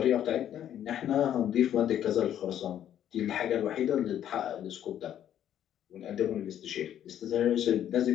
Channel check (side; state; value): right; quieter; 10.6 dB